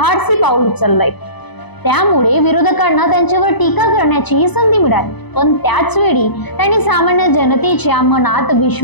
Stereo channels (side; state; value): right; late; 0.99 ms